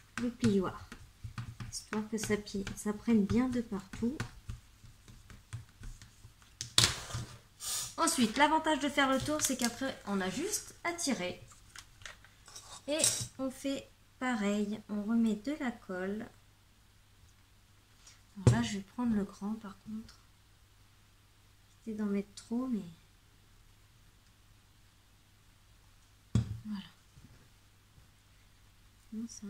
le plioir. Histoire que ça prenne bien de partout. Ensuite, l'avantage de faire le tour, c'est qu'après, on a juste à tirer. Et on fait pareil, on remet de la colle. Alors là, je vais prendre le grand par contre. J'essaie d'en mettre trop, mais... Voilà. Non, c'est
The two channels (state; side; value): identical; both; correlation 1.00